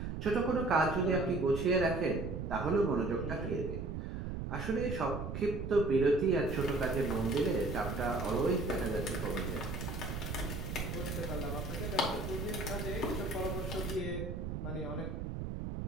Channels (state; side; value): noise; right; rumble, 5 dB below the sound